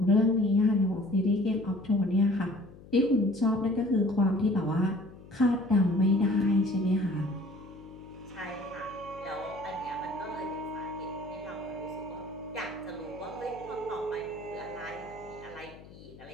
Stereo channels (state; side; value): noise; left; hum, 20 dB below the sound